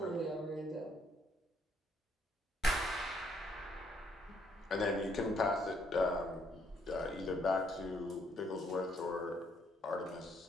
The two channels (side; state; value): both; normal; correlation 0.69